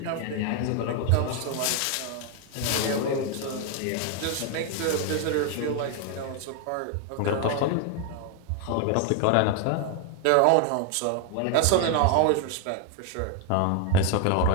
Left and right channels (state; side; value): different; both; correlation 0.00